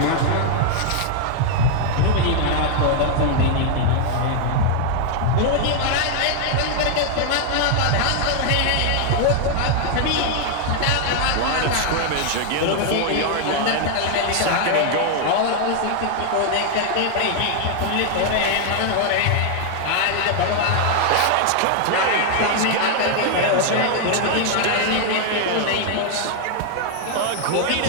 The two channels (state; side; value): different; both; correlation 0.00